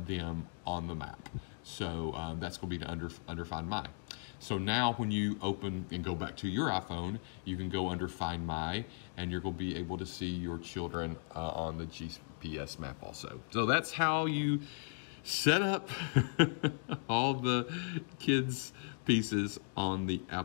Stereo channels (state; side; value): silent; right; 53 dB below the other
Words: on the map. So that's going to be under Find My. So now when you open and go back to your iPhone, you can go under Find My, and you're going to be able to see your children on the GPS map also. So that's how you set up all the kids' pieces on the